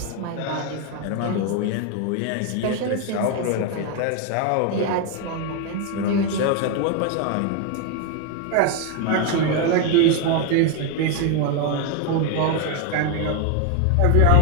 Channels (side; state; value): both; different; correlation 0.01